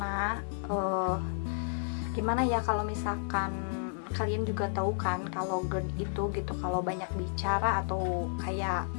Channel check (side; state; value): right; silent; digital silence